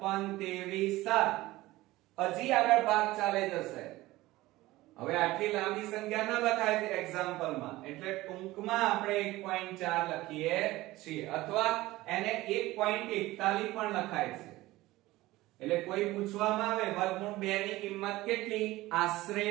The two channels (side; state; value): left; quieter; 18.2 dB